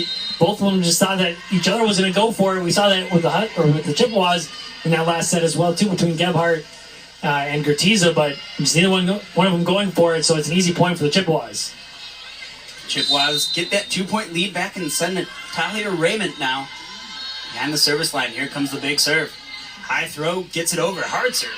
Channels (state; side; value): identical; both; correlation 1.00